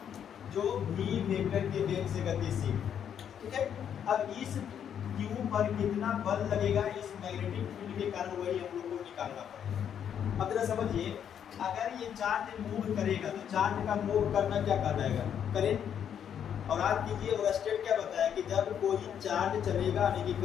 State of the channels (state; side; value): quieter; right; 8.7 dB